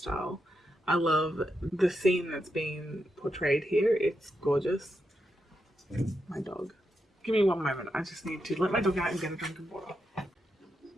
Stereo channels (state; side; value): normal; both; correlation 0.85